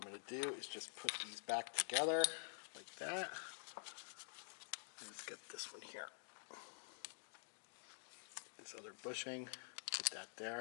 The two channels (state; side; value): silent; right; digital silence